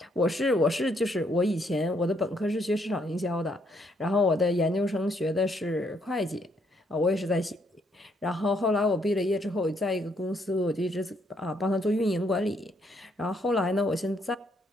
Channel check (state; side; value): normal; both; correlation 0.71